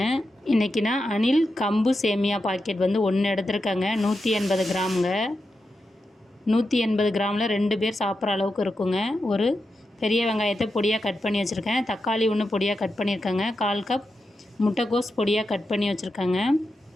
இன்றைக்கி நான் அணில் கம்பு சேமியா பாக்கெட் 1 எடுத்துருக்கேங்க. 180 கிராமுங்க. 180 கிராமில் 2 பேர் சாப்பிட்ற அளவுக்கு இருக்குங்க. ஒரு பெரிய வெங்காயத்தை பொடியாக கட் பண்ணி வச்சுருக்கேன். தக்காளி 1 பொடியாக கட் பண்ணியிருக்கேங்க. 1/4 கப் முட்டைக்கோஸ் பொடியாக கட் பண்ணி வச்சுருக்கேங்க.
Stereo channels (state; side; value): normal; both; correlation 0.88